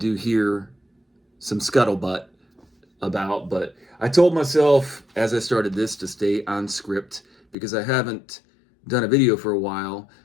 hear some scuttlebutt but I told myself as I started this to stay on script because I haven't done a video for a while.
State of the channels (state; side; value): drops out; right; at 7.6 s